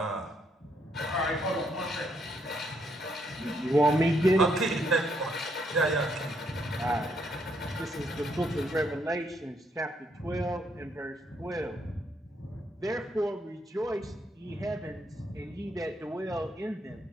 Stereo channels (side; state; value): both; normal; correlation 0.73